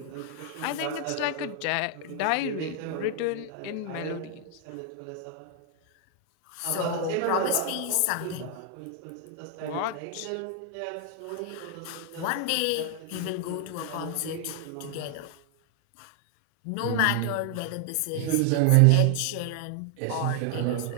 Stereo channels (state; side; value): different; both; correlation 0.00